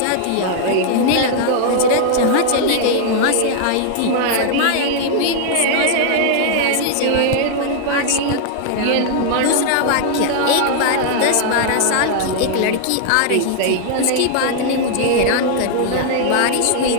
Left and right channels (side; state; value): both; different; correlation 0.00